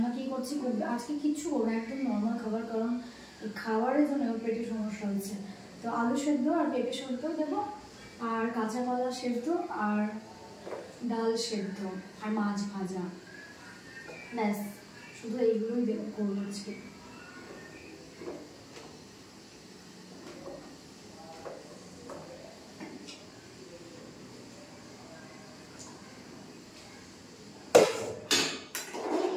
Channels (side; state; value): both; identical; correlation 1.00